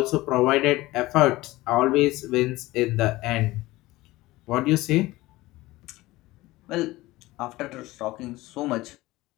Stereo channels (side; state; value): right; quieter; 18.8 dB